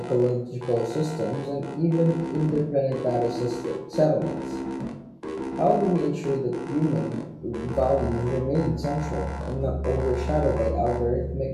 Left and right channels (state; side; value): identical; both; correlation 1.00